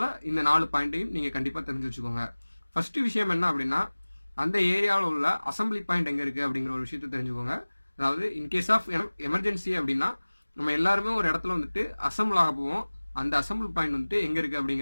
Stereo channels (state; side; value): inverted; both; correlation -1.00